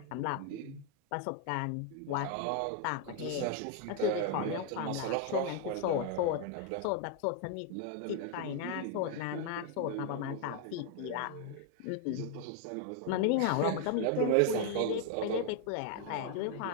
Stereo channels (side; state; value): both; different; correlation 0.00